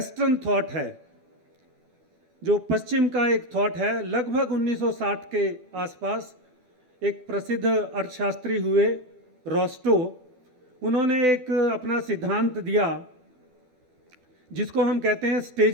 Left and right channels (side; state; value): left; late; 12 ms